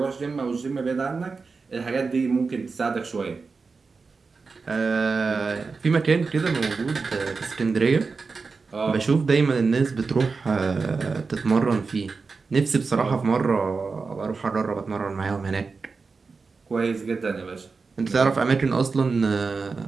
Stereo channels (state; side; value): quieter; left; 4.5 dB